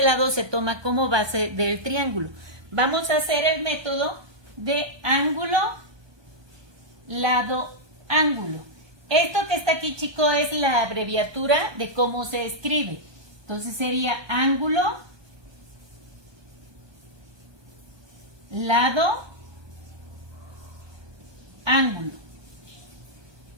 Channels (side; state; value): left; late; 1.2 ms